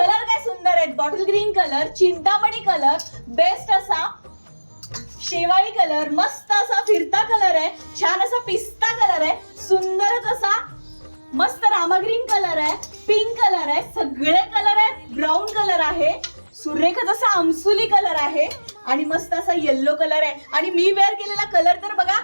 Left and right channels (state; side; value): inverted; both; correlation -1.00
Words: काय सुंदर आहेत, bottle green colour, Chintamani colour, best असा शेवाळी कलर, मस्त असा फिरता कलर आहे, छान असा पिस्ता कलर आहे, सुंदरच असा मस्त रामा ग्रीन कलर आहे, पिंक कलर आहे, सगळे कलर आहेत, ब्राऊन कलर आहे, सुरेखच असा आमसुली कलर आहे आणि मस्त असा येल्लो कलर आहे. आणि मी वेअर केलेला कलर तर बघा,